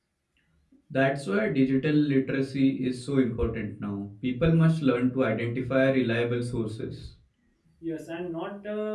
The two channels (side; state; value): both; identical; correlation 1.00